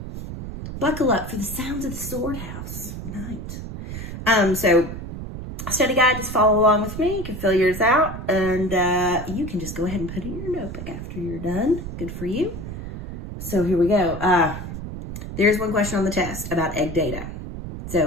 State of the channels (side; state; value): right; noise; rumble, 8 dB below the sound